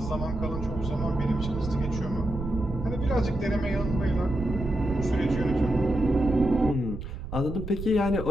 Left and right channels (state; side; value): noise; right; rumble, 8 dB below the sound